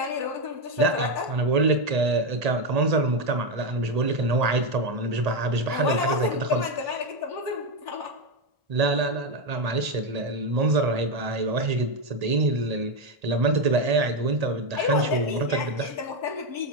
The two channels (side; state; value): left; late; 1.8 ms